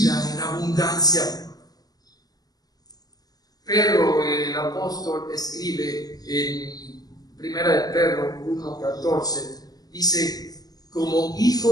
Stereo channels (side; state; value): right; late; 0.19 ms